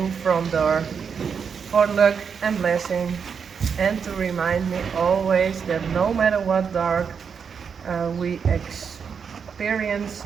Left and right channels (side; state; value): left; quieter; 6.5 dB